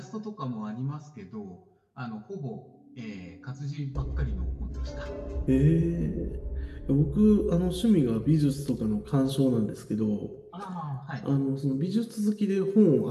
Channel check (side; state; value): both; identical; correlation 1.00